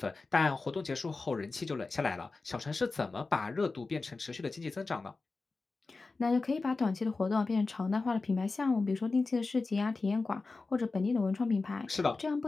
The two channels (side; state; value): right; quieter; 3.8 dB